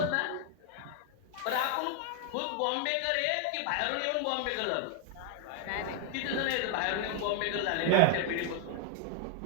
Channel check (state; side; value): different; both; correlation 0.00